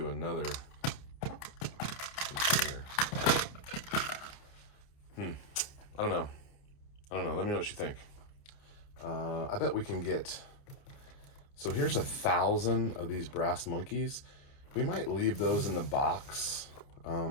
another container. I don't know. Let me know what you think. I bet we can get... So here's 1,000 of these brass monkeys. We might leave those in the box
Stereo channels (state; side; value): late; right; 29 ms